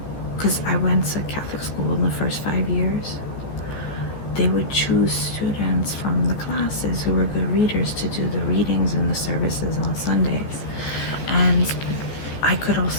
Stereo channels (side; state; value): right; late; 14 ms